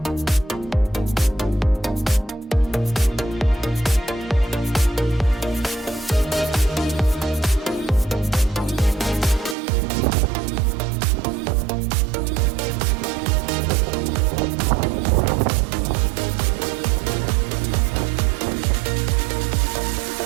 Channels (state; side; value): drops out; left; at 9.6 s